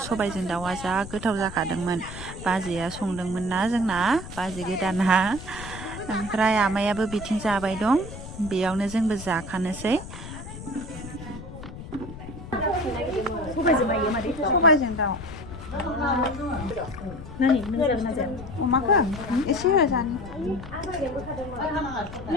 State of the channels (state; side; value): noise; left; rumble, 12 dB below the sound